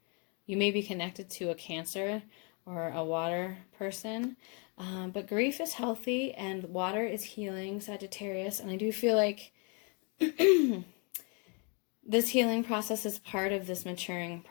You may be connected to a Cancer or a water person, but grief is healthy and water is healing, Sagittarius. And I do feel like this healing process is part of this maturing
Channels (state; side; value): quieter; right; 35.1 dB